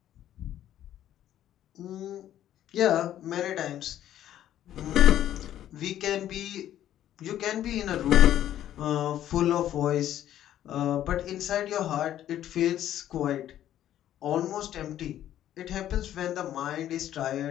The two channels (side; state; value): right; quieter; 11.8 dB